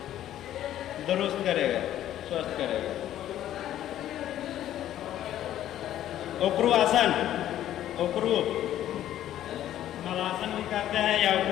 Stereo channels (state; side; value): quieter; right; 12.1 dB